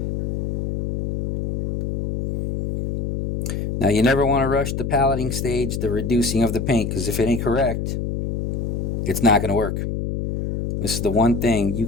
Now you never want to rush the paletting stage, the reducing of the paint, because if it ain't correct, it's not going to work. This is the one thing you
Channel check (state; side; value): noise; left; hum, 2 dB below the sound